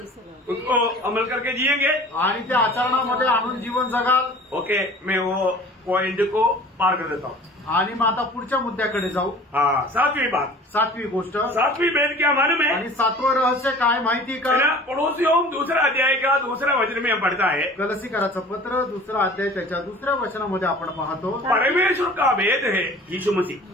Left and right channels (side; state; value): both; normal; correlation 0.45